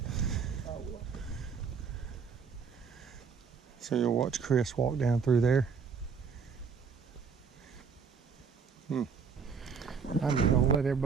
So you'll watch Chris walk down through there. I'm just gonna let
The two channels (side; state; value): left; quieter; 5.9 dB